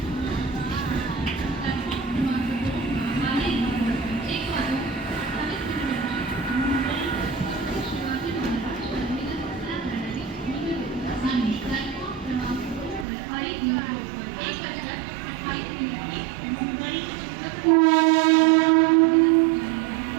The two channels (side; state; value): left; drops out; at 13.1 s